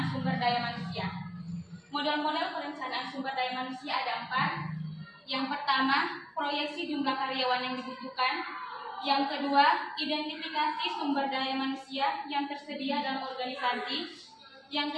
sumber daya manusia. Model-model perencanaan sumber daya manusia ada 4. Yang pertama, proyeksi jumlah karyawan yang dibutuhkan. Yang kedua, identifikasi sumber daya manusia yang tersedia dalam organisasi.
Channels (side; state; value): both; identical; correlation 1.00